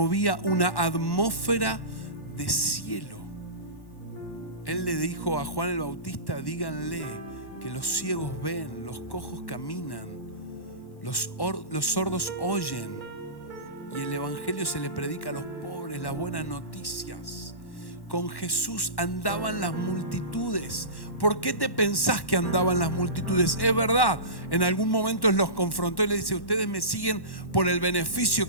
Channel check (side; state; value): right; late; 1.1 ms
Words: una atmósfera de cielo. Él le dijo a Juan el Bautista: díganle que los ciegos ven, los cojos caminan, los sordos oyen, y el evangelio se le predica a los pobres, las buenas noticias. Con Jesús andaban las multitudes. ¿Por qué te pensás que andaban las multitudes? Es verdad, en algún momento Él los confrontó y les dice: ustedes me siguen por el beneficio